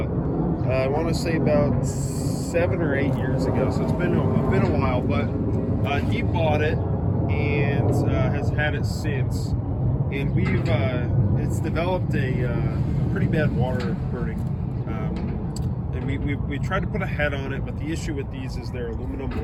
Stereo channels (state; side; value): identical; both; correlation 1.00